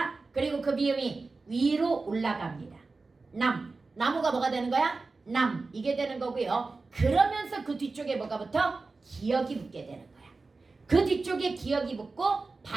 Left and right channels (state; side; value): quieter; left; 3.8 dB